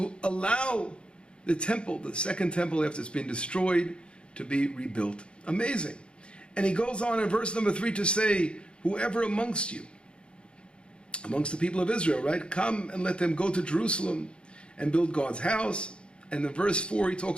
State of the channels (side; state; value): right; late; 0.055 ms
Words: allow the temple, the second temple after it's been destroyed, to be rebuilt. Amazing. And he goes on in verse number 3 to say, whoever amongst you, amongst the people of Israel, right, come and let them go to Jerusalem and build God's house. And in verse 4 he